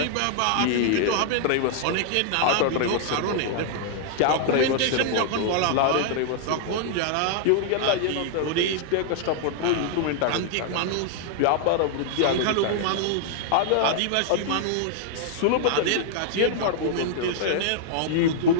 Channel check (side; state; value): both; different; correlation -0.01